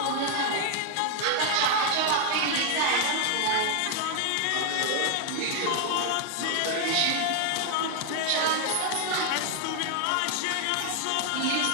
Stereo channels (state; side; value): different; both; correlation 0.00